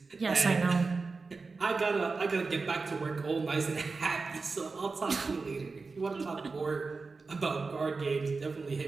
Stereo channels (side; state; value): left; quieter; 4.2 dB